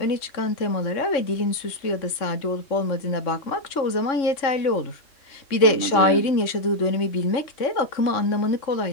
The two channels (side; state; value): right; late; 3.6 ms